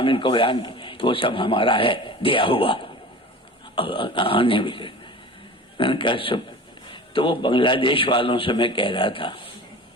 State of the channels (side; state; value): both; normal; correlation 0.37